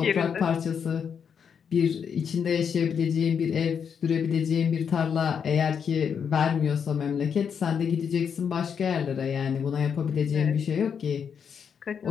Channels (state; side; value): quieter; right; 7.1 dB